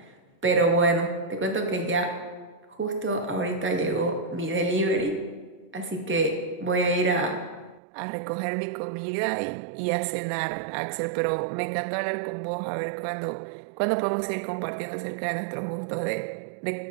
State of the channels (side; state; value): left; drops out; at 7.8 s